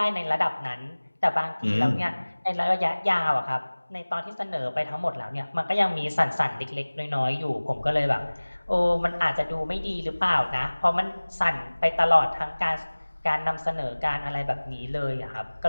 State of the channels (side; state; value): both; inverted; correlation -1.00